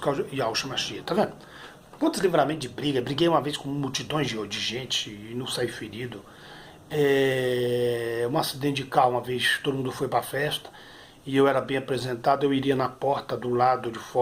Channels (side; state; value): both; identical; correlation 1.00